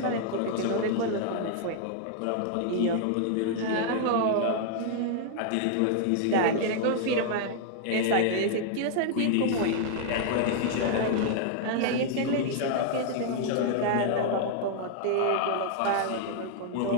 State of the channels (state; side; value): different; both; correlation -0.01